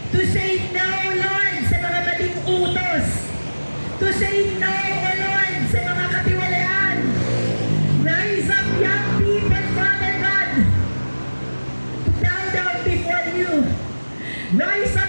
to say no, Lord, sa mga maling utos, to say no, O Lord, sa mga katiwalaan. Rise up, young people, Father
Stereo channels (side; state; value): both; inverted; correlation -1.00